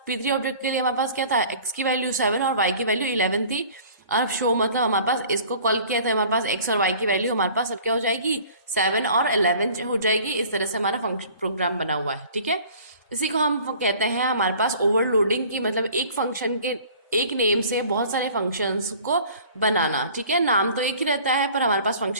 क्या था, x की वैल्यू 7 और y की वैल्यू 11 थी। अब शो मतलब हमारे पास इसको कॉल किया था, हमारे पास x और y की वैल्यू हमारे पास अब क्या हो जाएगी, 7 और 11 हो जाएगी। इस तरह से हमारा फंक्शन प्रोग्राम बना हुआ है। ठीक है, इसी को हम कहते हैं हमारे पास ओवरलोडिंग की, मतलब एक फंक्शन के एक नेम से बहुत सारे फंक्शंस को बनाना। ठीक है, नाम तो एक ही रहता है पर हमारे पास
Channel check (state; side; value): inverted; both; correlation -0.48